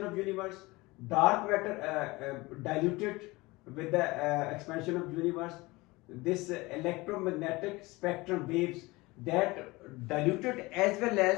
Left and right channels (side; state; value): right; quieter; 22.2 dB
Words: of universe, dark matter diluted with the expansion of universe, this electromagnetic spectrum waves that diluted as well